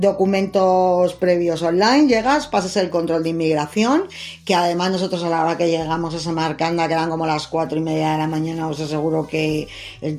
previos online. Llegas, pasas el control de inmigración, que además nosotros a la hora que llegamos a Samarcanda, que eran como las 4:30 de la mañana, os aseguro que el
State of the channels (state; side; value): identical; both; correlation 1.00